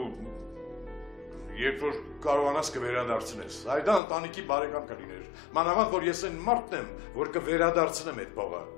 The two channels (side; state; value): right; drops out; at 4.0 s